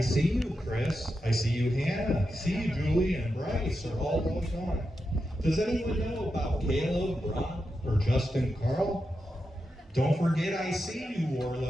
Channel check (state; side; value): normal; both; correlation 0.88